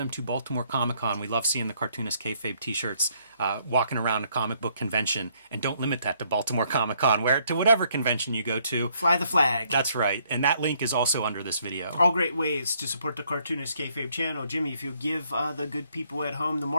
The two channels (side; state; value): both; inverted; correlation -0.69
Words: to Baltimore Comic-Con. We love seeing the Cartoonist Kayfabe t-shirts walking around a comic book convention. And don't limit that to Baltimore Comic-Con. Wear it to whatever convention you go to. Fly the flag. That's right. And that link is also under this video. All great ways to support the Cartoonist Kayfabe channel. Jimmy, if you give the good people at home the